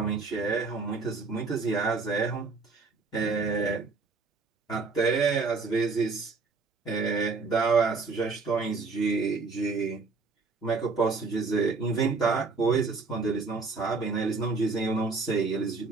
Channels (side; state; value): left; quieter; 4.3 dB